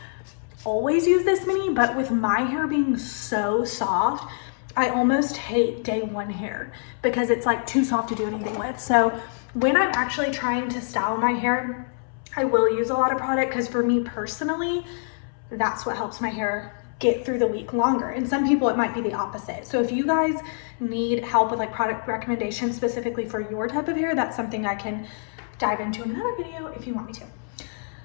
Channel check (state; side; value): silent; right; 62 dB below the other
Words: always use this many, but with my hair being so soft, I almost hate day one hair because it's like too soft to do anything with. So when I'm actually trying to style my hair, I will use a lot of product because for me personally, that's what helps my hair get through the week longer. And some people it might be the opposite. So if you guys need help with like product recommendations specifically for your type of hair, that's something I can dive into in another video if you want me to.